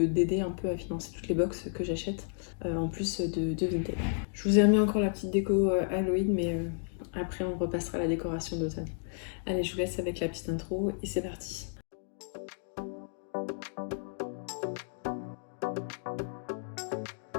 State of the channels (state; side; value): silent; right; digital silence